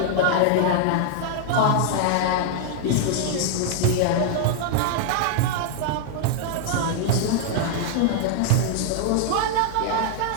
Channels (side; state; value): both; different; correlation 0.00